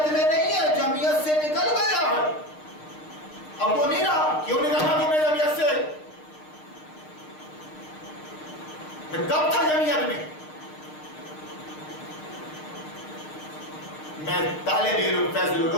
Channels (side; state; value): right; late; 6.5 ms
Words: میں نہیں ہے، جمعیت سے نکل گیا ہے، اب وہ نہیں رہا۔ کیوں نکلنا تم نے جمعیت سے؟ میں کب تھا جمعیت میں؟ میں طالب علم فیض